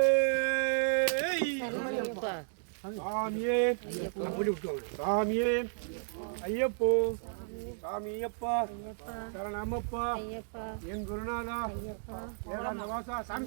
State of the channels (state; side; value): silent; left; digital silence